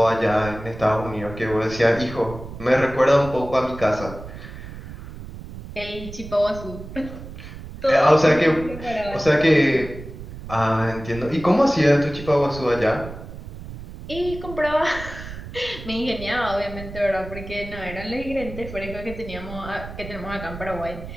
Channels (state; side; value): noise; right; rumble, 12 dB below the sound